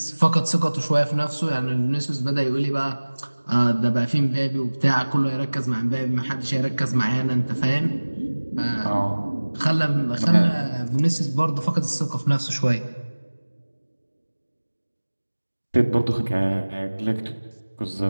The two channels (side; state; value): both; inverted; correlation -1.00